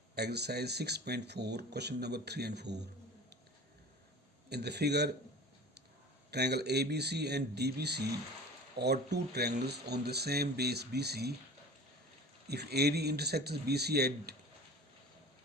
Exercise 6.4, question number 3 and 4. In the figure, triangle ABC and DBC are two triangles on the same base BC. If AD intersects BC at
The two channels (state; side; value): normal; both; correlation 0.40